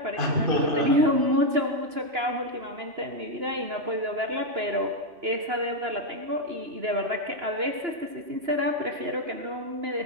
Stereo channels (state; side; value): late; left; 2.9 ms